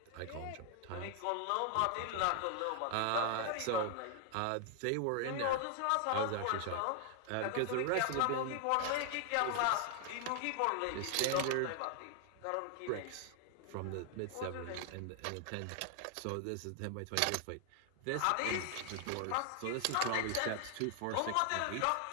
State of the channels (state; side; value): different; both; correlation 0.00